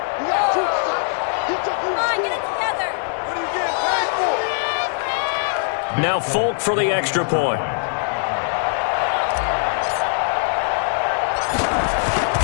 Now Folk for the extra point.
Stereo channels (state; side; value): silent; right; digital silence